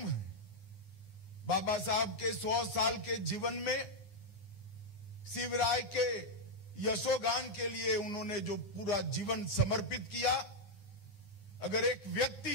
बाबा साहब के 100 साल के जीवन में शिवराय के यशोगान के लिए उन्होंने जो पूरा जीवन समर्पित किया, अगर एक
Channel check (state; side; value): late; right; 9.9 ms